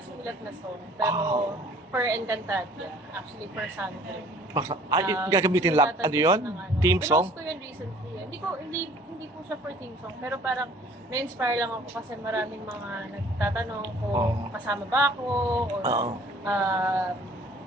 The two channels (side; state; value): both; normal; correlation 0.53